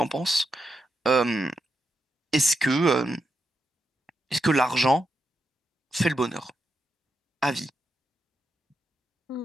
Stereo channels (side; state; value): both; normal; correlation 0.84